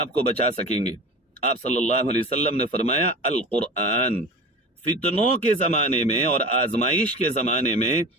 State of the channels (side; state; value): both; normal; correlation 0.33